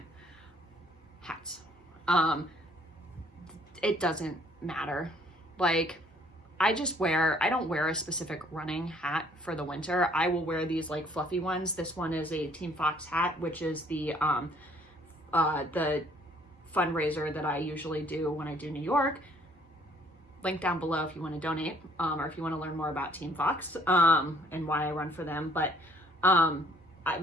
Hats. It doesn't matter. Like, I don't wear a specific running hat for the winter. I will wear these like fluffy ones. This one is a Team Fox hat, which is the fundraiser that I usually do when I do New York. Link down below if you want to donate, or if you want to learn more about Team Fox and why I run for them. But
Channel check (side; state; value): both; normal; correlation 0.61